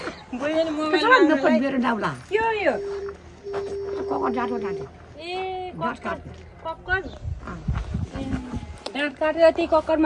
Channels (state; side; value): identical; both; correlation 1.00